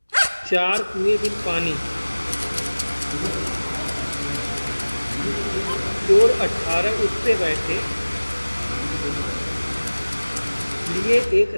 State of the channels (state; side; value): inverted; both; correlation -1.00